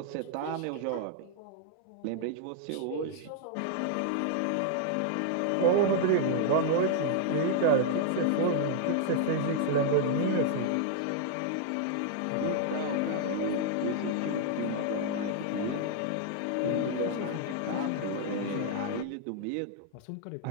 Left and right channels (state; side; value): different; both; correlation -0.01